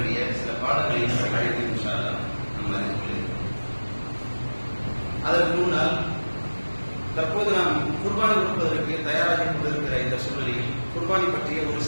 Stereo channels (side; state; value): both; inverted; correlation -1.00